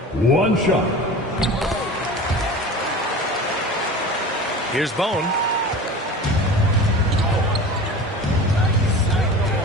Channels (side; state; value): both; normal; correlation 0.35